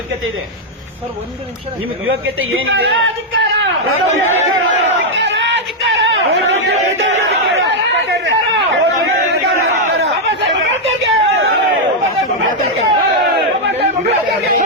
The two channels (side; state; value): both; normal; correlation -0.02